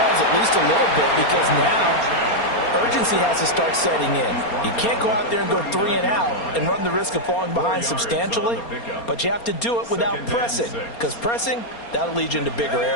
at least a little bit, because now urgency has to start setting in. You can't go out there and go 3 and out and run the risk of falling behind substantially, but you have to do it without pressing, because pressing, that'll lead you into bigger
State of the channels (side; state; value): right; late; 4.3 ms